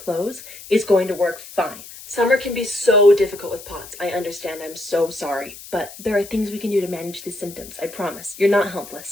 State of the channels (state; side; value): noise; left; hiss, 16 dB below the sound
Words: is going to work fine. Summer can be so difficult with POTS. I understand, I'm so sorry, but there are things we can do to manage these symptoms. I promise. You're not